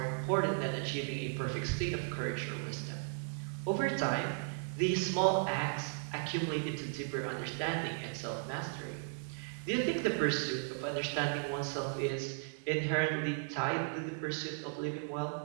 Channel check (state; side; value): silent; left; digital silence